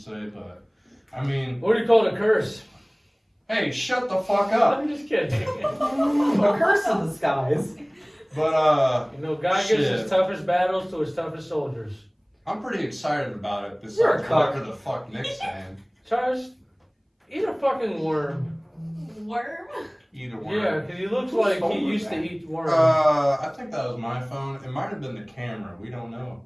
But I mean, What do you call it, a curse? hey, shut the fuck up. I'm just kidding. A curse in the skies. But You know, God gives Shit. his toughest battles to his toughest soldiers. I'm pretty excited about it. You're a Besides cuck. whatever the fuck Nick's saying. Travis, eat a fucking worm. Worm? Either one. Yeah, because he looks like he phone was used to that? eat worms. I think that was my phone. It might have been the camera. We don't know.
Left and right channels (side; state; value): both; identical; correlation 1.00